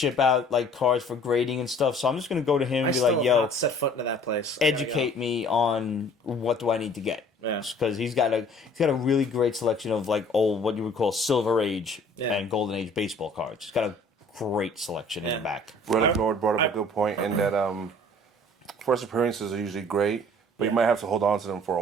out like cards for grading and stuff. So I'm just gonna go to him and be like, "Yo, set foot into that place. Educate me on what do I need to get." Yeah. Because he's got a really great selection of like old, what you would call Silver Age and Golden Age baseball cards. He's got a great selection in the back. Relic Lord brought up a good point in that first appearances are usually great. But you might have to hold on to them for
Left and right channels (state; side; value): normal; both; correlation 0.53